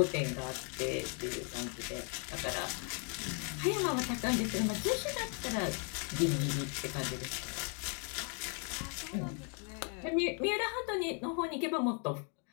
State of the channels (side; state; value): right; quieter; 39.5 dB